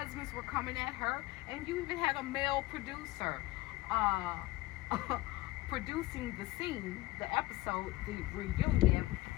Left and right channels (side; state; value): right; quieter; 18.7 dB